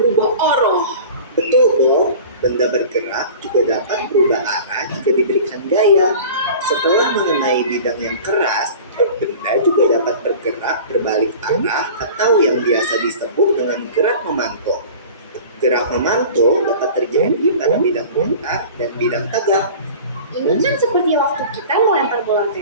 arah. Betul, Bob. Benda bergerak juga dapat berubah arah jika diberikan gaya. Setelah mengenai bidang yang keras, benda juga dapat bergerak berbalik arah atau yang biasa disebut dengan gerak memantul. Gerak memantul dapat terjadi pada bidang putar dan bidang tegak. Ini kan seperti waktu kita melempar bola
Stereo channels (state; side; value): inverted; both; correlation -0.40